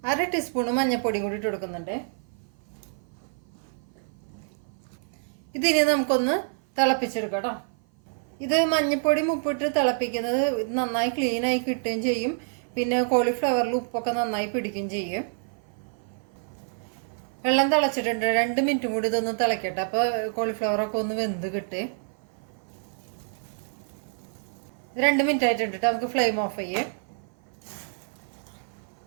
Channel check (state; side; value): silent; left; 55 dB below the other